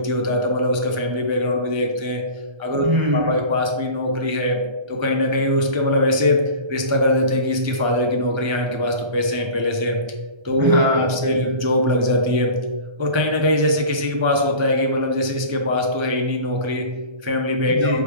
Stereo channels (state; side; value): late; left; 1.3 ms